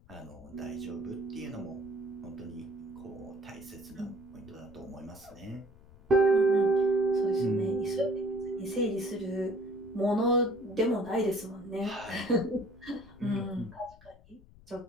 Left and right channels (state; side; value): noise; left; rumble, 23 dB below the sound